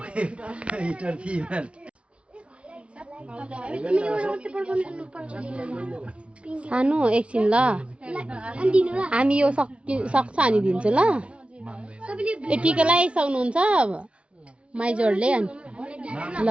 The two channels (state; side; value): late; left; 0.060 ms